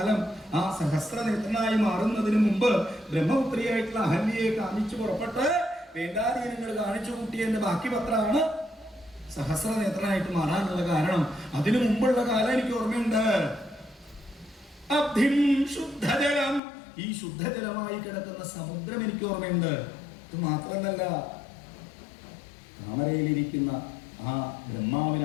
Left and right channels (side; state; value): right; drops out; at 16.6 s